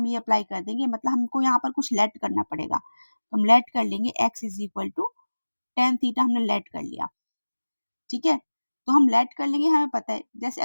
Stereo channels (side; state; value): both; inverted; correlation -1.00